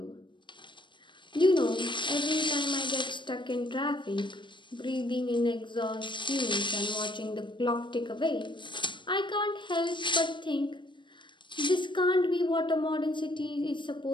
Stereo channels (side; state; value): right; late; 0.23 ms